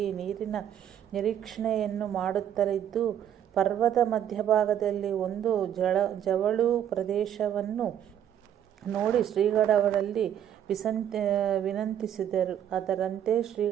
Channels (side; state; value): left; quieter; 10.0 dB